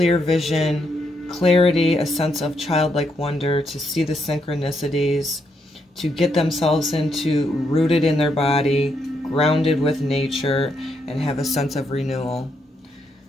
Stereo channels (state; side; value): normal; both; correlation 0.78